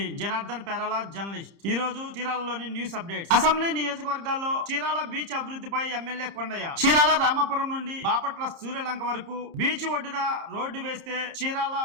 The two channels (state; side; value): late; left; 30 ms